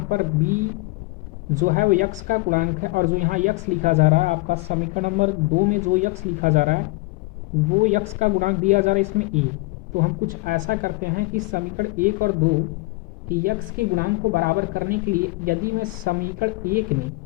पर बी जो है वो यक्स का गुणांक है और जो यहाँ यक्स लिखा जा रहा है आपका समीकरण नंबर 2 में जो यक्स लिखा जा रहा है वो यक्स का गुणांक दिया जा रहा है इसमें ए। तो हम कुछ ऐसा करते हैं कि समीकरण 1 और 2 की यक्स के गुणांक को बराबर करने के लिए यदि मैं समीकरण 1 में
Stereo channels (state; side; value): quieter; right; 23.8 dB